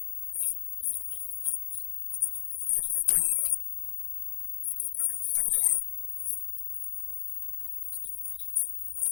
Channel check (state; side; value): silent; right; 56 dB below the other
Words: wo ọkọ̀ọ̀kọ̀ lulẹ̀ gbí, ó ti mọ̀ pé ò sí retí. dókítà orí ṣe ọjọ́ kan mo jókòó mo ronú, mo ní ìjọwọ́ ọlọ́run sínú